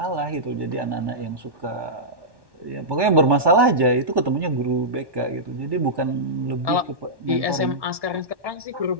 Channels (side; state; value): left; late; 1.1 ms